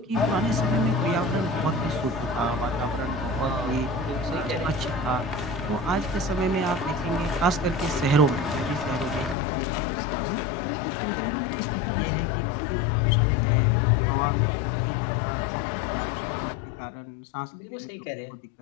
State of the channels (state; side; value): drops out; right; at 9.3 s